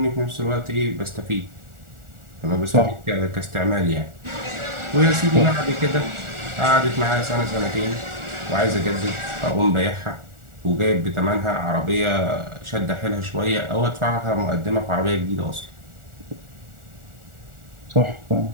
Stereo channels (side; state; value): left; late; 1.4 ms